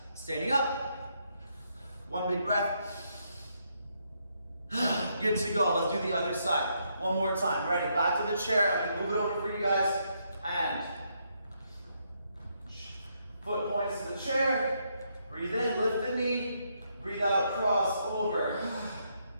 Standing up. One big breath. Good to go. Let's do the other side. One more time. Ready? Back to the chair. I'm going to move it over for you guys. And foot points to the chair. Breathe in, lift the knee. Breathe out, cross over.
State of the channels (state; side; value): inverted; both; correlation -0.76